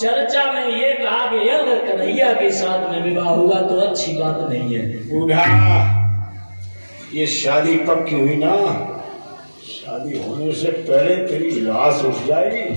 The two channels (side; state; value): both; inverted; correlation -1.00